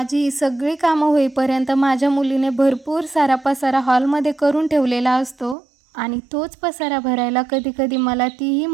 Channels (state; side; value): drops out; left; at 5.6 s